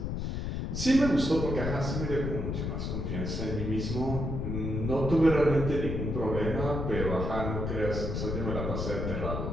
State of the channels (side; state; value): left; noise; rumble, 2 dB below the sound